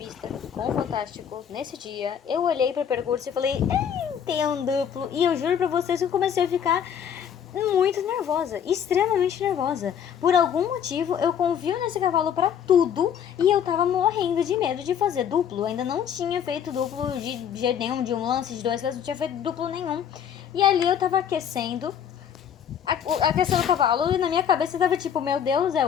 com o Fantástico, nesse dia, eu olhei pro percurso e falei, tem um duplo, e eu juro pra vocês que eu comecei a ficar muito nervosa, extremamente nervosa. Por algum motivo, eu confio nesse cavalo pra tudo e eu tava morrendo de medo de fazer duplo. Eu ainda não tinha feito duplo de jeito nenhum, de um lance, de dois lances, não tinha feito duplo nenhum. E ali eu tava aquecendo o cavalo e na minha cabeça tava tipo, meu Deus, é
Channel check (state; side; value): quieter; right; 8.6 dB